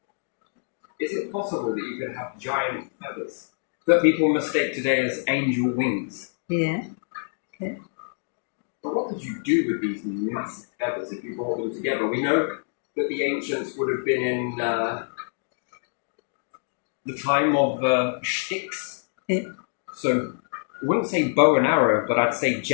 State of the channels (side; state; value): right; silent; digital silence